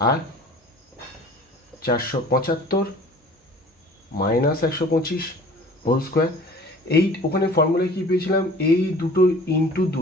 আর 475 মাইনাস 125 হোল স্কোয়ার। এই ওখানে ফর্মুলায় কী পেয়েছিলাম? এই দুটো ইন্টু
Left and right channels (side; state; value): both; normal; correlation 0.46